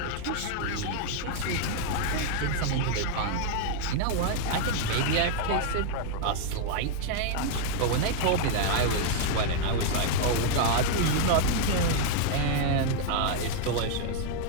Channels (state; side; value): different; both; correlation 0.00